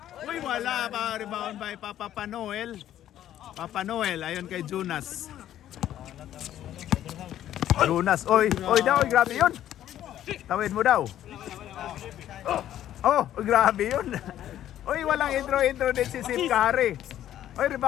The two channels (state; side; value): quieter; right; 11.9 dB